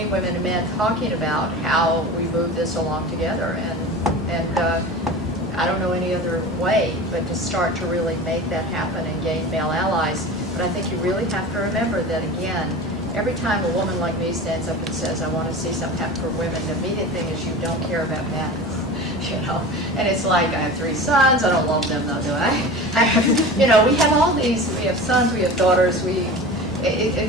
women and men talking about how we move this along together. And I don't know any other way but to start to really make that happen and gain male allies. But I think you really have to remember that, again, every time a woman like me stands up and says, I want to see something happen for women, the immediate thing is you don't care about men. You know, and it's like, I have 3 sons, I don't love them though, do I? You know, we have all these, we have sons, we have daughters,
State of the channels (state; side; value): normal; both; correlation 0.34